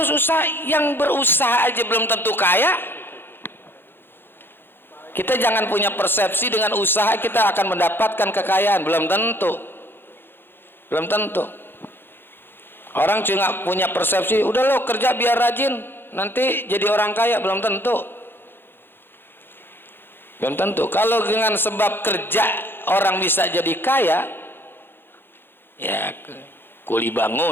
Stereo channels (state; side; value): late; right; 0.10 ms